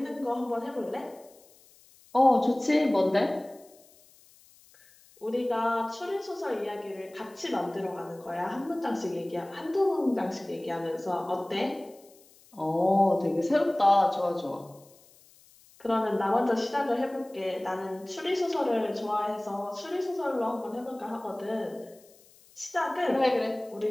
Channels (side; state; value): left; noise; hiss, 27 dB below the sound